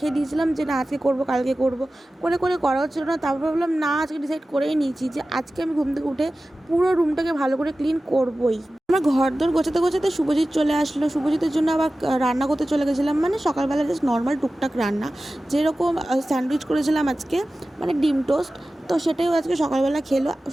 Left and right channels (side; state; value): both; normal; correlation 0.95